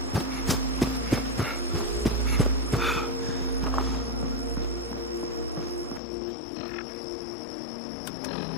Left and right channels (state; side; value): drops out; right; at 6.0 s